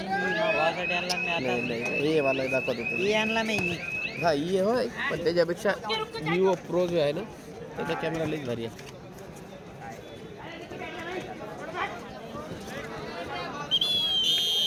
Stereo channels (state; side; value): identical; both; correlation 1.00